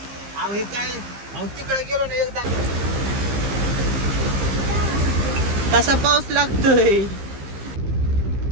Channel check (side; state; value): left; late; 15 ms